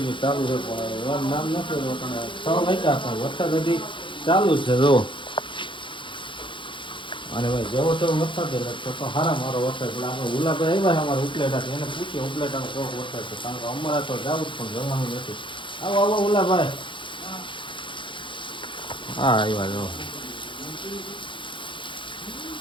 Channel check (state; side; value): late; right; 0.24 ms